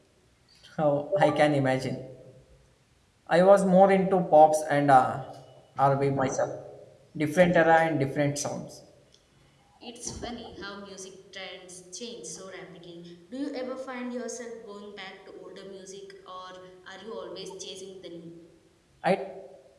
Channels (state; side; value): identical; both; correlation 1.00